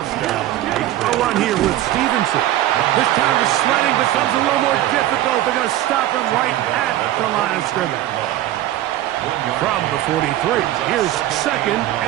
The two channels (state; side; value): quieter; left; 13.9 dB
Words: run here with Stevenson. This time the sledding becomes a little more difficult. They're going to stop him right at the line of scrimmage. From the 43, here's 2nd